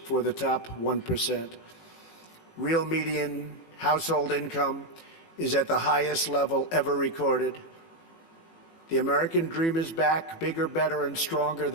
for the top 1%. Real median household income is at the highest level ever recorded. The American dream is back, bigger, better, and stronger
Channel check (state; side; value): late; right; 18 ms